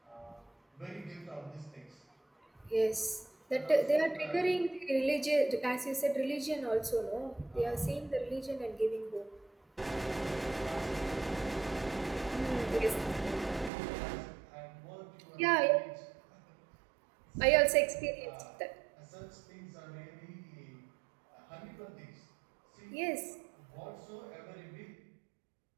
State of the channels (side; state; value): left; drops out; at 13.7 s